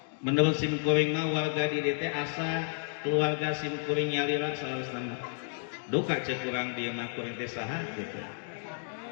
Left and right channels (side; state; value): right; silent; 57 dB below the other